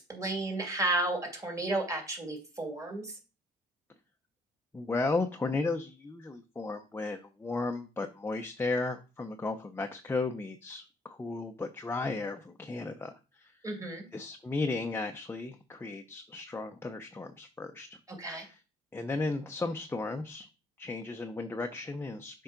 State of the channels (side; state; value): both; normal; correlation 0.65